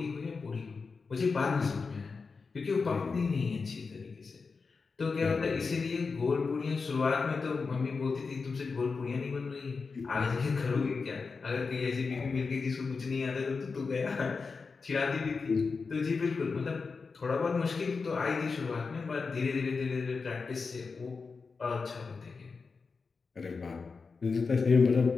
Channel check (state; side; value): quieter; right; 4.7 dB